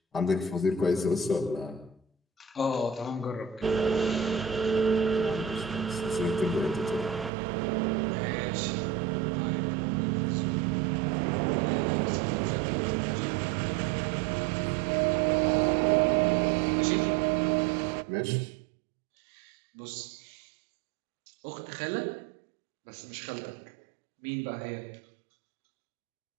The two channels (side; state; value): left; drops out; at 7.3 s